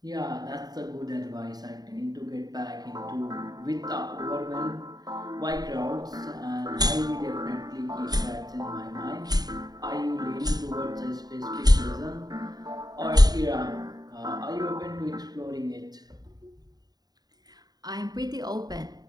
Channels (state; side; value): late; left; 0.19 ms